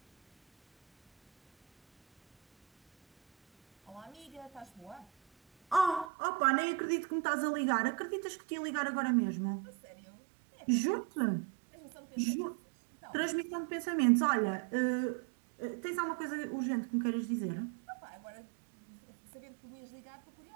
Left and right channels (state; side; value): drops out; left; at 6.1 s